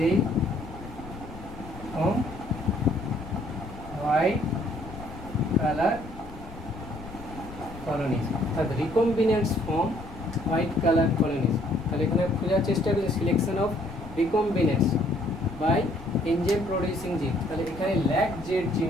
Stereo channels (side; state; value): left; noise; rumble, 14 dB below the sound